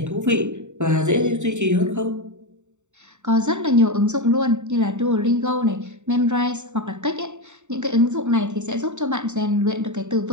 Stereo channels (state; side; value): late; left; 0.84 ms